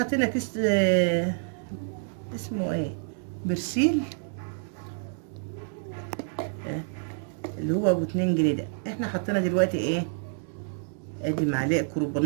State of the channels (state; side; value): silent; left; digital silence